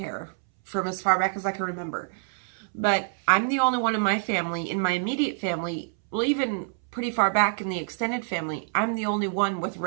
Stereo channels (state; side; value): silent; left; 60 dB below the other